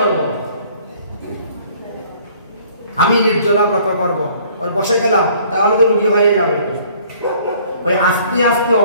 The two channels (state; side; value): inverted; both; correlation -0.57